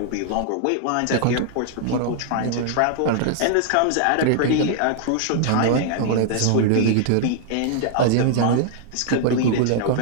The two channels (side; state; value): both; different; correlation -0.01